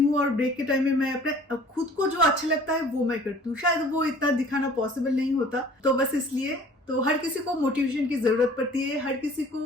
और ब्रेक के टाइम में मैं अपने खुद को जो अच्छा लगता है वो मैं करती हूँ। शायद वो इतना दिखाना पॉसिबल नहीं होता, तो बस इसलिए। तो हर किसी को मोटिवेशन की जरूरत पड़ती है, हर किसी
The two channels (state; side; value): normal; both; correlation 0.50